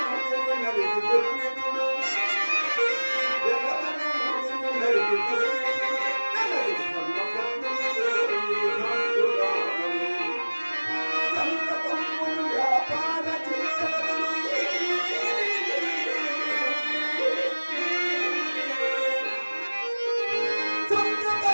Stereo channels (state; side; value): inverted; both; correlation -1.00